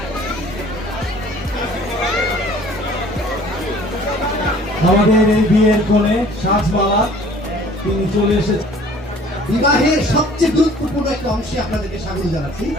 আমাদের এই বিয়ের কোণে সাজমালা তিনি চলে এসেছেন। বিবাহের সবচেয়ে গুরুত্বপূর্ণ একটা অংশে আপনাদেরকে স্বাগত জানাচ্ছি।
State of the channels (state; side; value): normal; both; correlation 0.52